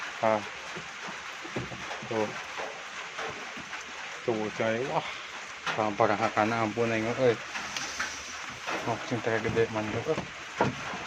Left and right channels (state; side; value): identical; both; correlation 1.00